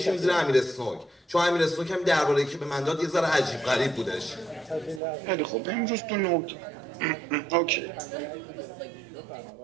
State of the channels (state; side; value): drops out; left; at 5.0 s